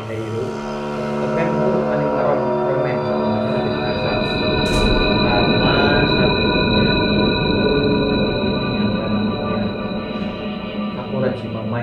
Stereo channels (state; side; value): identical; both; correlation 1.00